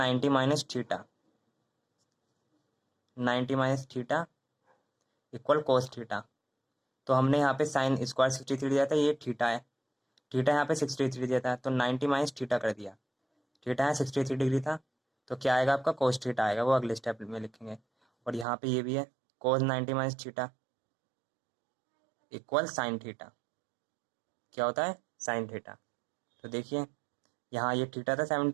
minus theta, 90 minus theta equal cos theta. तो हमने यहाँ पे साइन स्क्वायर 63 दिया था, ये थीटा है, थीटा यहाँ पे 63 दिया था, तो 90 माइनस थीटा कर दिया। थीटा यहाँ 63 डिग्री था, तो क्या आएगा आपका कोस थीटा आएगा, वो अगले स्टेप में लिखेंगे। और यहाँ पे ये भी है कोस 90 minus theta equal sine theta, क्या होता है साइन थीटा। तो देखिए यहाँ ये थीटा था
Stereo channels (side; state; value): left; drops out; at 18.4 s